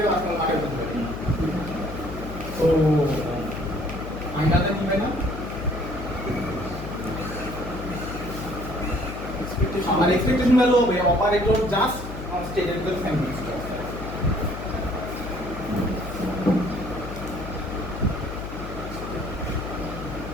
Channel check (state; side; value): noise; left; hum, 9 dB below the sound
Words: আসলাম আগে বলতে পারি। তো ফাইনালটা কি হয় না? আমার এক্সপেকটেশন ভ্যালু হবে operator just on stated with family stock.